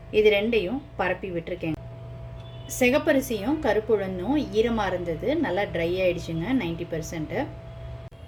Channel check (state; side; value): identical; both; correlation 1.00